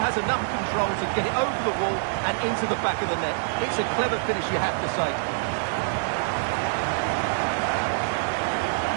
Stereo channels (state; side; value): silent; left; digital silence